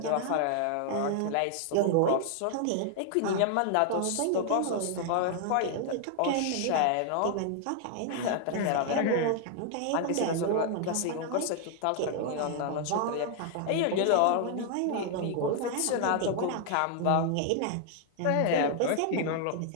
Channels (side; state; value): both; different; correlation 0.00